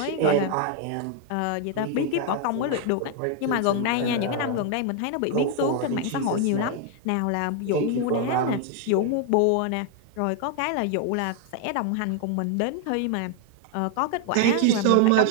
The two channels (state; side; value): different; both; correlation 0.01